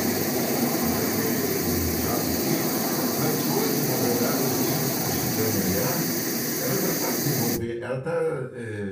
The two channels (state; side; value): identical; both; correlation 1.00